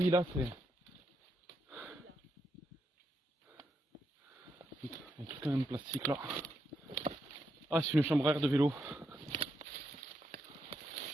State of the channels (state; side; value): normal; both; correlation 0.81